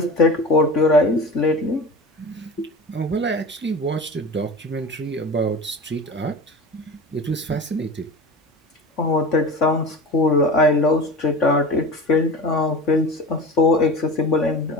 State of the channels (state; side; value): normal; both; correlation 0.33